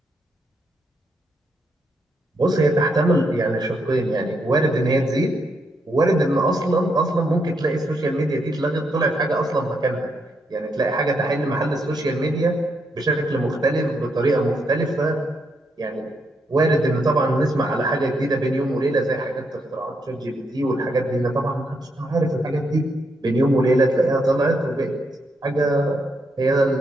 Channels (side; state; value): both; normal; correlation 0.78